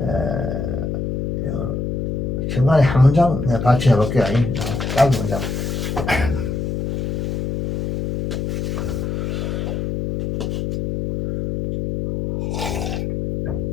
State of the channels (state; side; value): noise; left; hum, 2 dB below the sound